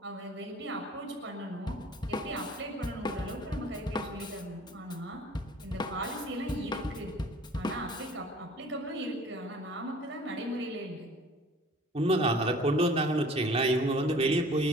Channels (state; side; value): normal; both; correlation 0.50